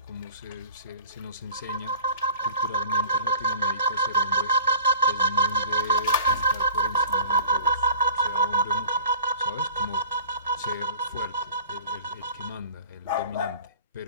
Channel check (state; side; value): inverted; both; correlation -0.44